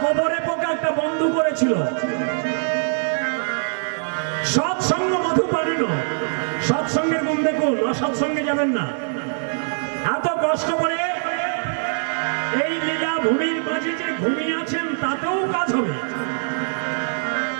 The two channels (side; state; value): left; silent; digital silence